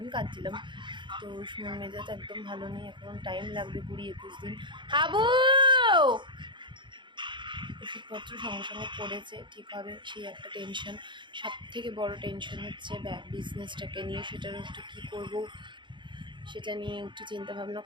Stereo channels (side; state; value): left; late; 0.23 ms